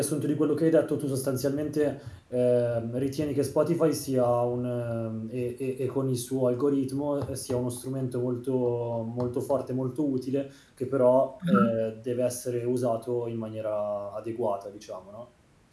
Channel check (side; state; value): both; identical; correlation 1.00